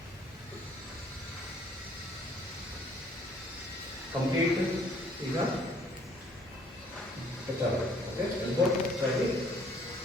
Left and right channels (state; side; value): normal; both; correlation 0.60